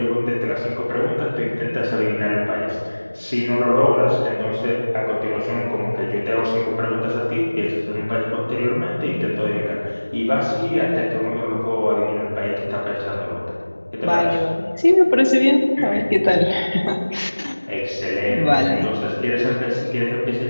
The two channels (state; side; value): inverted; both; correlation -1.00